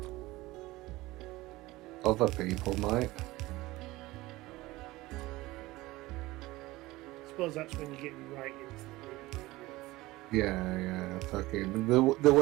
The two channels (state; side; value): quieter; left; 19.2 dB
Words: Other people might. I suppose that's when you're getting right into the Yeah, fucking the